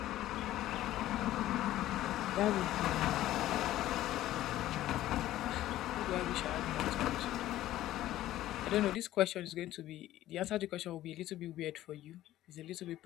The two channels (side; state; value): right; quieter; 14.2 dB